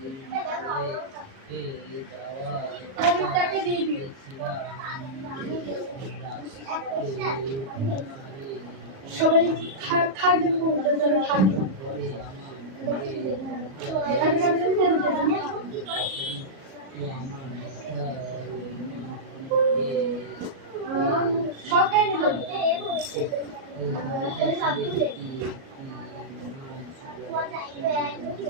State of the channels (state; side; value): late; left; 37 ms